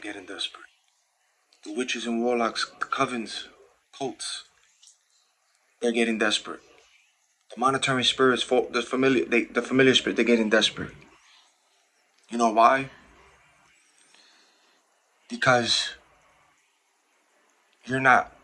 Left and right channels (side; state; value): both; identical; correlation 1.00